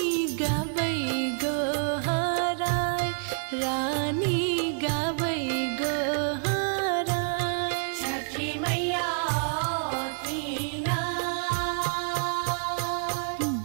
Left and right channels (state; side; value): silent; left; 59 dB below the other